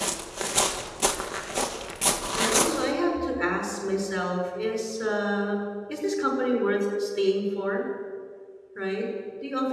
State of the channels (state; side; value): identical; both; correlation 1.00